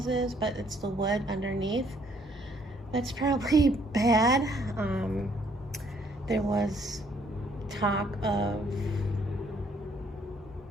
but it's the wood underneath that's probably bad. There was talk of,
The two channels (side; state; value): both; normal; correlation 0.66